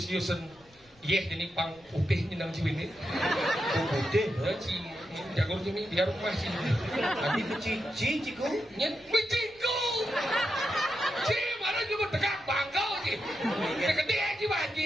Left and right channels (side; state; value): left; noise; rumble, 30 dB below the sound